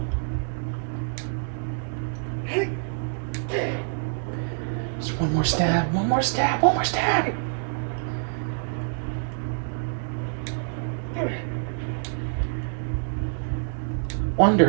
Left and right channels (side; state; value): left; silent; 61 dB below the other